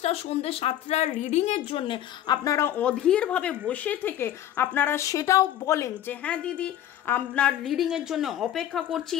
সন্ধ্যে 7টার রিডিংয়ের জন্য আপনারা অধীরভাবে বসে থেকে আপনারা সেটাও বলেন যে হ্যাঁ দিদি আপনার রিডিংয়ের জন্য অপেক্ষা করছি,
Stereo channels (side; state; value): right; quieter; 11.6 dB